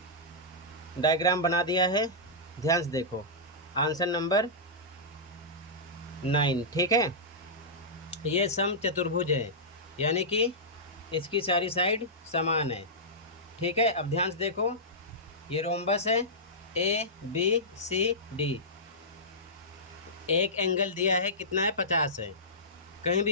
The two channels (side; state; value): both; normal; correlation -0.15